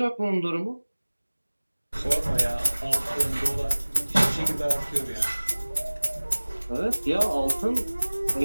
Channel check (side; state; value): both; inverted; correlation -1.00